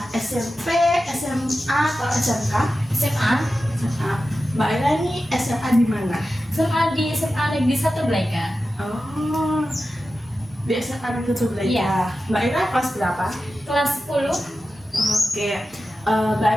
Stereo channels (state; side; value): normal; both; correlation 0.93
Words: SMP, SMA, atau SMK? SMA. SMA. Mbak Ira ini SMA di mana? SMA di SMA Negeri 1 Blaika. Oh, di SMA Negeri 1 Blaika. Iya. Mbak Ira kelas berapa? Kelas 10. Oke. Mbak